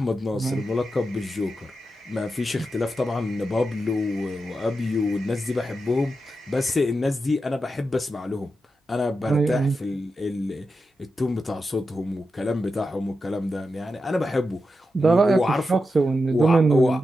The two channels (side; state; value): both; normal; correlation 0.89